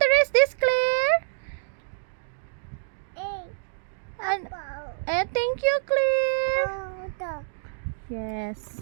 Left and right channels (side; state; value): left; silent; digital silence